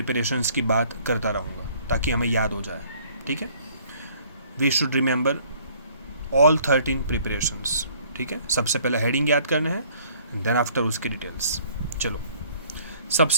की बात करता रहूँगा ताकि हमें याद हो जाए, ठीक है। We should remember all 13 preparations, ठीक है। सबसे पहले हेडिंग याद करना है, देन आफ्टर उसके डिटेल्स। चलो,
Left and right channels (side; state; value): both; inverted; correlation -0.58